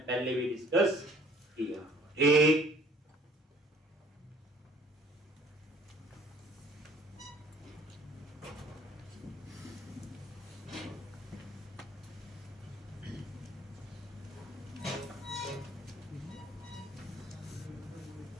पहले भी डिस्कस किया। एक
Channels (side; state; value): both; normal; correlation 0.55